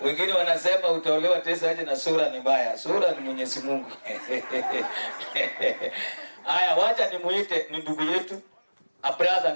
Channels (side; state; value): both; inverted; correlation -1.00